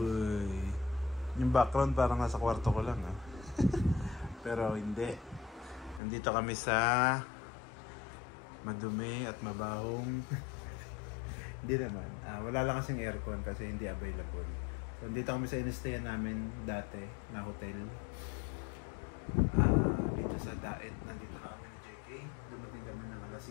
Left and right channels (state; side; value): drops out; right; at 6.0 s